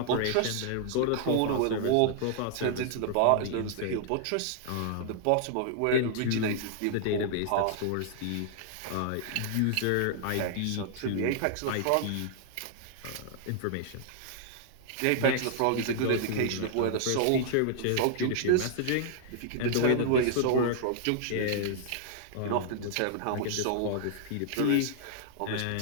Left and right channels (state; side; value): different; both; correlation -0.01